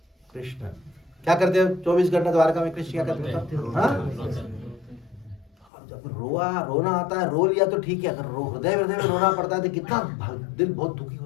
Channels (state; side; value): drops out; right; at 5.7 s